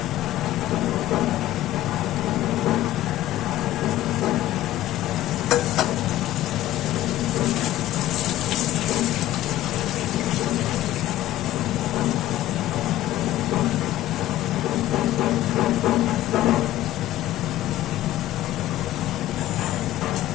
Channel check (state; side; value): quieter; right; 14.4 dB